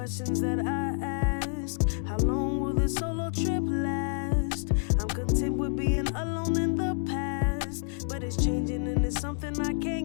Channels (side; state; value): right; silent; 59 dB below the other